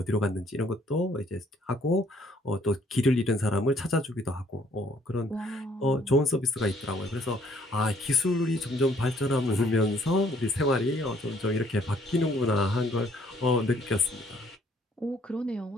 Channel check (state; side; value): normal; both; correlation 0.63